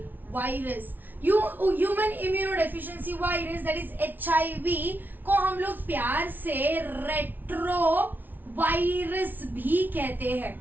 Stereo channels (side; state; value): left; late; 0.086 ms